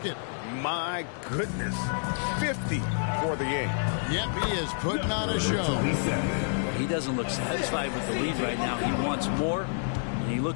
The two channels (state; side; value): silent; right; digital silence